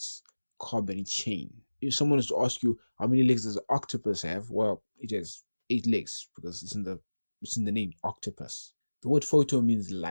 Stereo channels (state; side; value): inverted; both; correlation -1.00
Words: carbon chain. If someone is to ask you how many legs does an octopus have, well, it has 8 legs because it's in the name, octopus. The word photo means